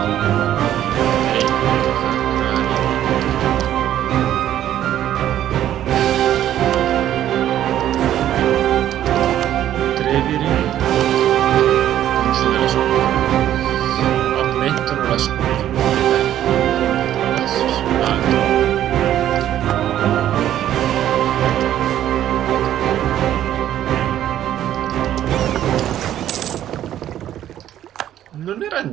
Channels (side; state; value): left; quieter; 11.8 dB